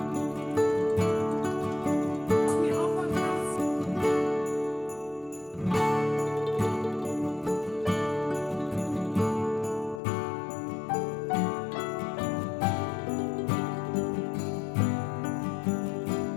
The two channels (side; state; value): right; drops out; at 10.0 s